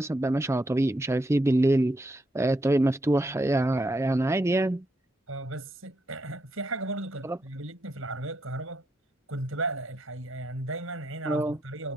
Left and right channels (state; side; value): normal; both; correlation 0.80